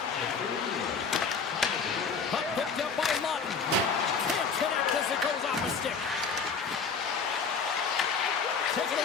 Puck picked up by Lawton. Can't connect as it goes off a stick. Taken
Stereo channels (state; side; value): quieter; right; 5.4 dB